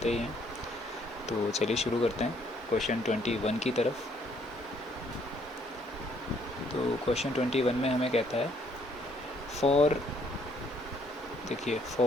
ही हैं। तो चलिए शुरू करते हैं क्वेश्चन 21 की तरफ। तो क्वेश्चन 21 में हमें कहता है फॉर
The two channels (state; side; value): normal; both; correlation 0.66